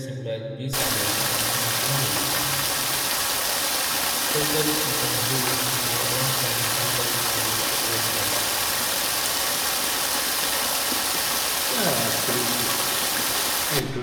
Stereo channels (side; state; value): both; identical; correlation 1.00